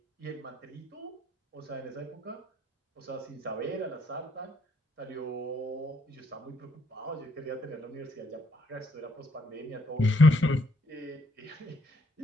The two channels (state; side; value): normal; both; correlation 0.71